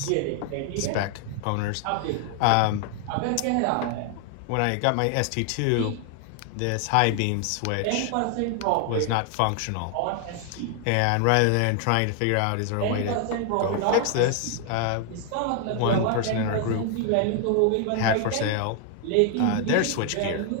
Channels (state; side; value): different; both; correlation 0.00